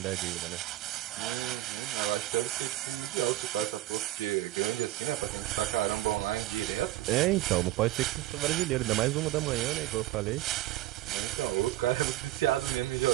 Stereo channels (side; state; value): left; quieter; 15.6 dB